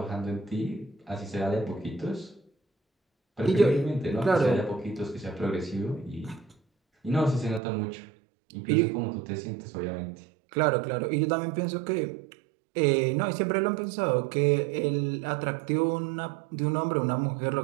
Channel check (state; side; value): drops out; left; at 7.6 s